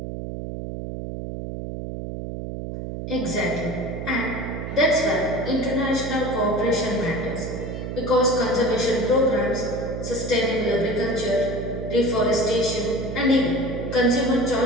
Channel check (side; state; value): right; noise; hum, 6 dB below the sound